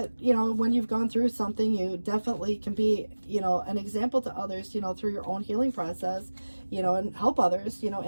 you know, when you've gone through something, you definitely can be, you know, an example to others, you know, through your own healing process, you know, and help others, you know,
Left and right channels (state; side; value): inverted; both; correlation -1.00